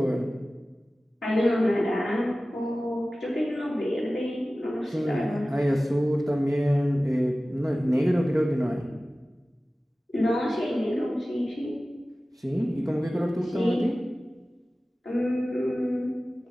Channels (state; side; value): normal; both; correlation 0.96